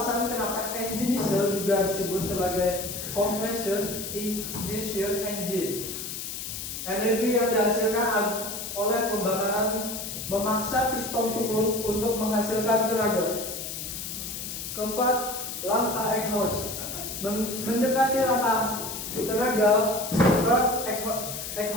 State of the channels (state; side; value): noise; left; hiss, 7 dB below the sound